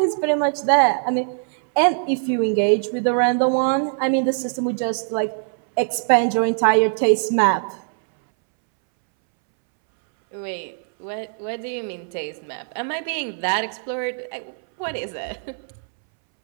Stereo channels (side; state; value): left; silent; 64 dB below the other